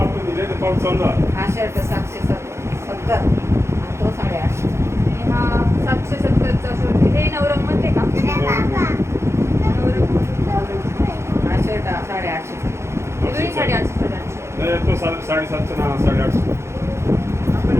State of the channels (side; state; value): left; late; 0.13 ms